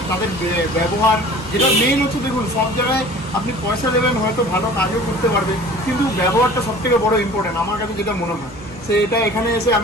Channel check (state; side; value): normal; both; correlation 0.45